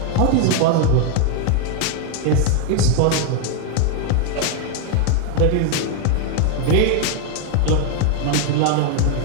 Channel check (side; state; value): both; different; correlation 0.00